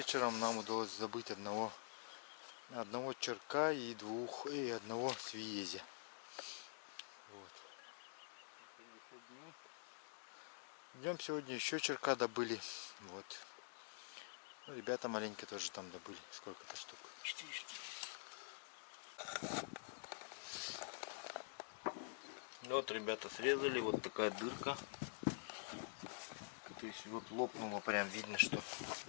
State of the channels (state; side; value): silent; right; digital silence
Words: нам удалось забыть одного черка и одного свиезя. Вот. Днем сегодня еще черка добыли. Вот. Ну, ребята маленькие тоже там добыли. Сколько-то штук? 4 штуки. Вот ребята срезали, вот такая дырка. То есть вот лопнуло, прям видно, что.